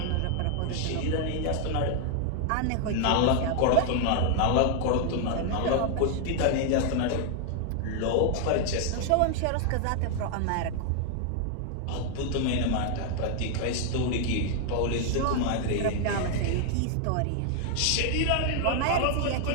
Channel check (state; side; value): different; both; correlation 0.00